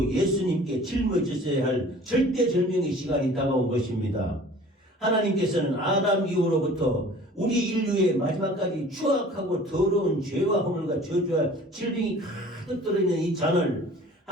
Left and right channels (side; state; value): both; normal; correlation 0.47